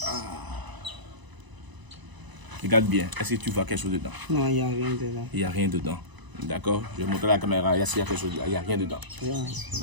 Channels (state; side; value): late; left; 1.0 ms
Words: Regarde bien, est-ce que tu vois quelque chose dedans? Non, il n'y a rien dedans. Il n'y a rien dedans. D'accord? Je vais montrer à la caméra, est-ce qu'il y a quelque chose dedans? Il n'y a rien dedans. Rien.